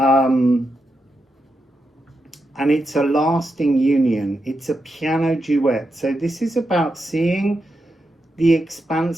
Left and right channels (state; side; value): normal; both; correlation 0.86